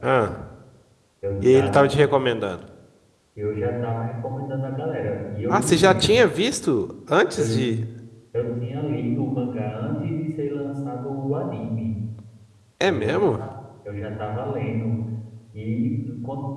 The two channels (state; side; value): identical; both; correlation 1.00